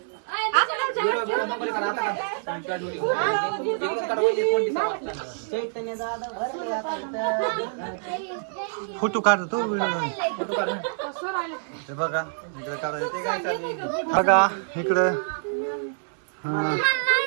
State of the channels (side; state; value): left; silent; digital silence